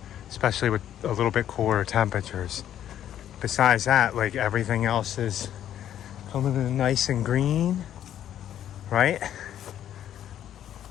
especially with a little bit cooler temperatures. Besides that, like, everything else is coming in nice and green, right?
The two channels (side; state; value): right; quieter; 10.8 dB